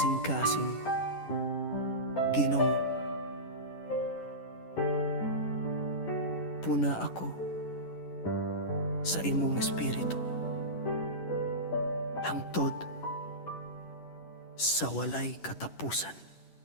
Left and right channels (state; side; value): late; right; 10 ms